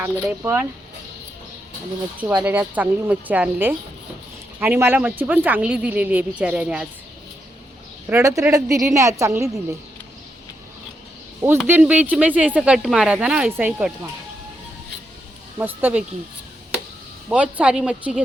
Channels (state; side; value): normal; both; correlation 0.82